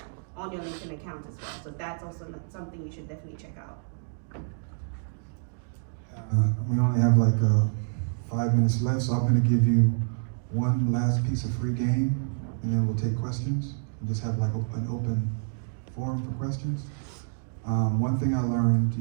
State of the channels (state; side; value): silent; left; digital silence